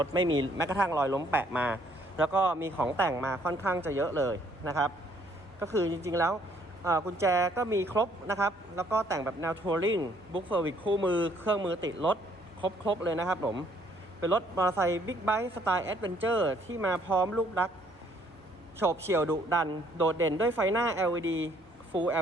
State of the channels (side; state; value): both; normal; correlation 0.65